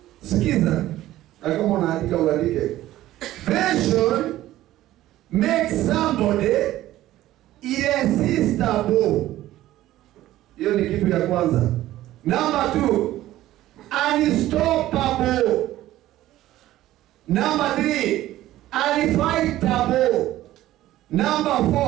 Sikiza. Kama unaandika uandike. Vision makes somebody irresistible. Hiyo ni kitu ya kwanza. Number 2, unstoppable. Number 3, unfightable. Number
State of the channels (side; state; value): left; quieter; 14.7 dB